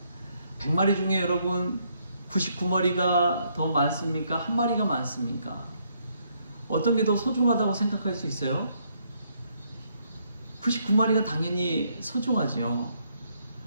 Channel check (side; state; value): both; inverted; correlation -0.72